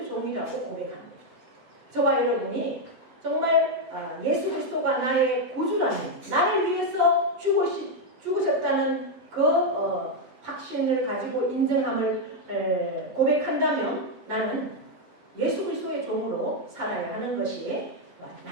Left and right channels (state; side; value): late; left; 8.0 ms